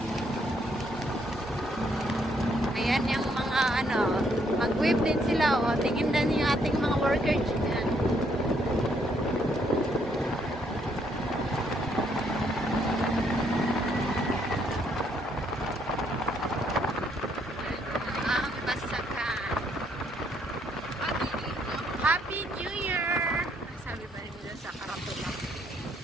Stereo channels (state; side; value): normal; both; correlation 0.71